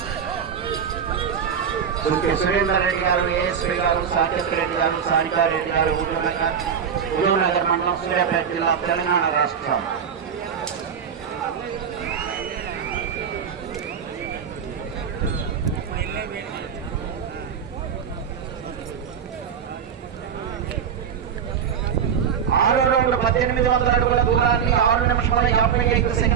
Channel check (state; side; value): quieter; left; 7.6 dB